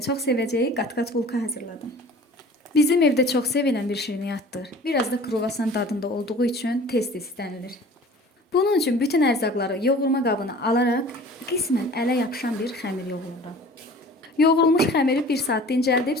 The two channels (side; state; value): both; normal; correlation 0.45